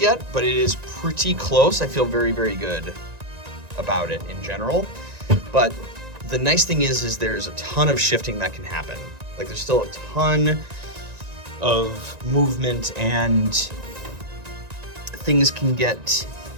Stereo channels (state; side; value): late; left; 1.9 ms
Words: yet, but it is pretty close. I feel very, very good about it in general. But the nice thing is there's a ton of shifting that can happen. Like, there's still a ton of movement and things can get